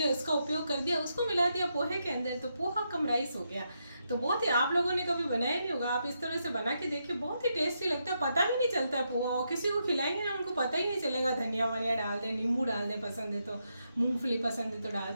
उसका उपयोग कर दिया, उसको मिला दिया पोहे के अंदर, तो पोहा कम राइस हो गया। तो बहुत ही, आप लोगों ने कभी बनाया नहीं होगा, आप इस तरह से बना के देखिए, बहुत ही टेस्टी लगता है, पता भी नहीं चलता है पोहा। और किसी को खिलाएंगे ना उनको पता ही नहीं चलेगा। धनिया वनिया डाल दें, नींबू डाल दें, पसंद है तो मूंगफली पसंद है तो डाल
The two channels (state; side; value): inverted; both; correlation -0.82